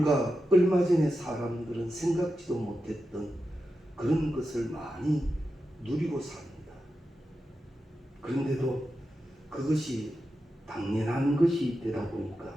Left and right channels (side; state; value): both; normal; correlation 0.90